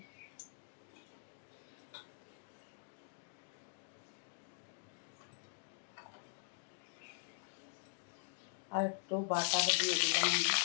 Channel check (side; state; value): right; silent; digital silence